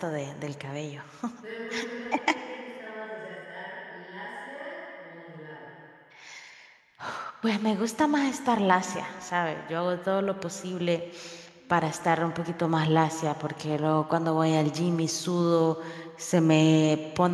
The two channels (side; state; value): both; identical; correlation 1.00